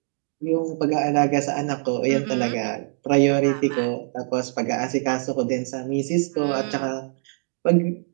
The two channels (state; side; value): silent; left; 58 dB below the other